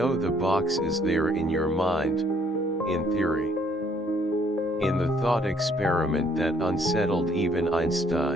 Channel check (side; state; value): both; normal; correlation 0.65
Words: the box is there in your mind, in theory. In the thought experiment that unsettled even